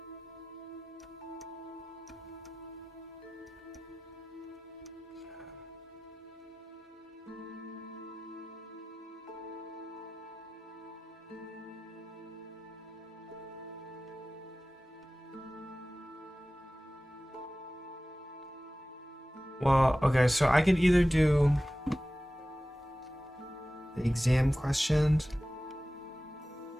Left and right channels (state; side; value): normal; both; correlation 0.96